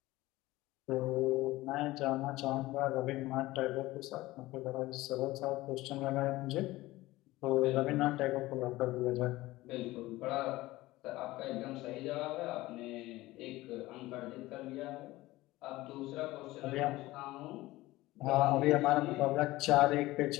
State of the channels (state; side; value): quieter; right; 18.3 dB